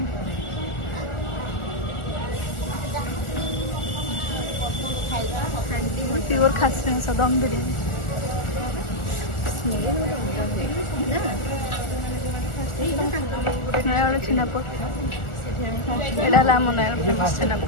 प्योर खासी मांस दम बिरयानी नयागड़ छेनापोड़ एटा होला आम नयागड़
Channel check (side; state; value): right; late; 1.4 ms